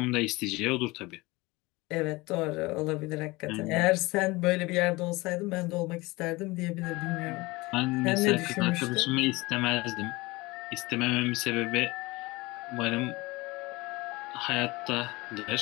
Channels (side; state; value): right; quieter; 22.4 dB